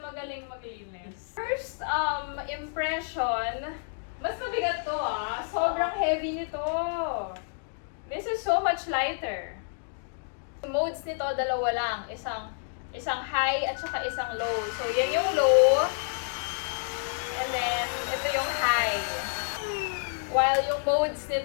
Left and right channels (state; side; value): silent; right; digital silence